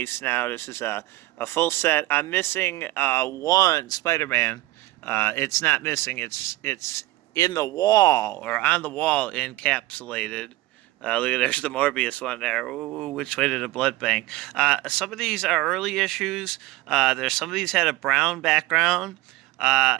now. This is a full set. I'm missing one Spider-Man. It's not missing. It's in the wall or on the wall encapsulated. Look at there's the Morbius one there. Ooh, which way to the blood bank? Some of these are early issues. There's some of these had a brown background,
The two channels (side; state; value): left; quieter; 18.2 dB